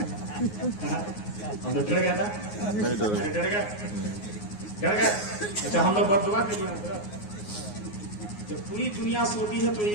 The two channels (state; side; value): late; right; 9.6 ms